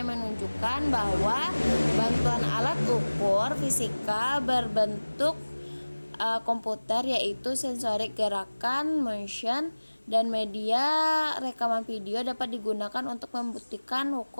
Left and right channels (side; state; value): both; inverted; correlation -1.00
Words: menunjukkan bahwa bantuan alat ukur fisika berbentuk komputer, yaitu sensorik gerakan motion, dan media rekaman video dapat digunakan untuk membuktikan